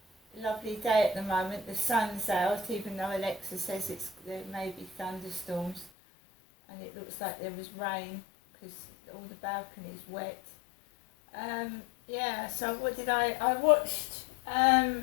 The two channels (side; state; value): right; drops out; at 5.9 s